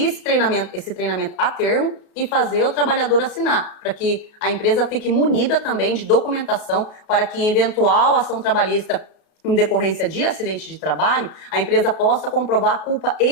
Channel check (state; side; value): late; right; 33 ms